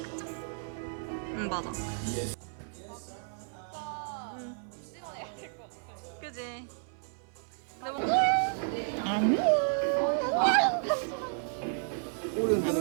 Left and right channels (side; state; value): left; silent; 56 dB below the other